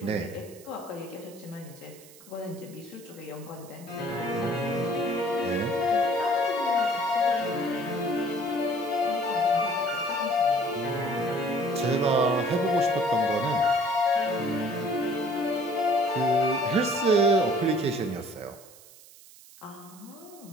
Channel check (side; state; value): right; noise; hiss, 22 dB below the sound